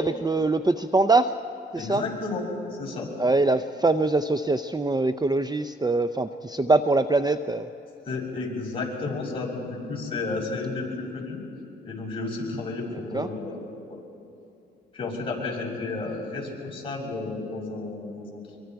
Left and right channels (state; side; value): normal; both; correlation 0.65